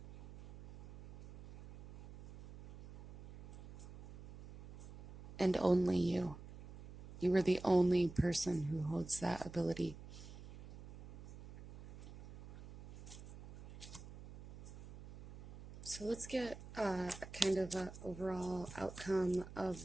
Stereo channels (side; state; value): right; noise; hum, 15 dB below the sound